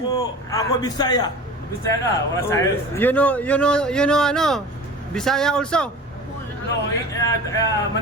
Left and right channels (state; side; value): normal; both; correlation 0.37